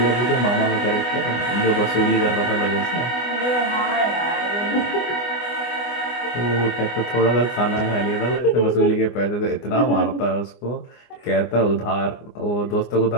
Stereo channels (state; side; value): late; right; 24 ms